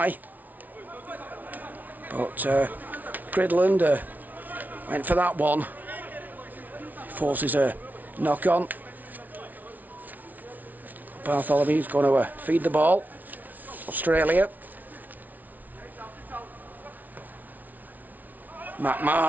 But Gridland went for that one. Forces a knock on. Bartholomew's going to feed the ball. Australia.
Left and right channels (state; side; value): late; left; 0.078 ms